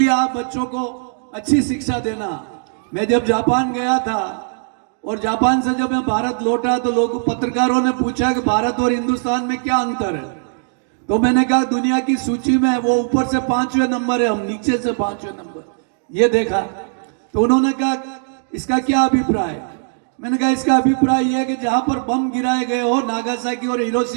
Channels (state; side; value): silent; left; digital silence